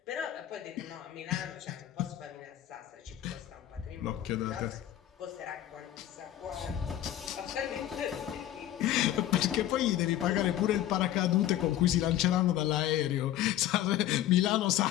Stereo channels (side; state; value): right; quieter; 12.5 dB